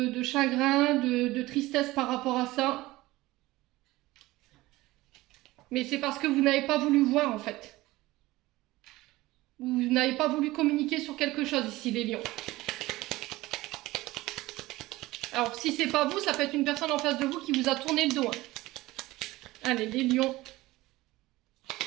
chagrin, de tristesse par rapport à ça. Mais c'est parce que vous n'avez pas voulu voir, en fait. Vous n'avez pas voulu communiquer sur quelque chose ici, les lions. Alors, si c'est pas vous, ça peut être une personne en face de vous qui vous a tourné le dos. Hein. Allez, les lions.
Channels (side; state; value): left; quieter; 18.7 dB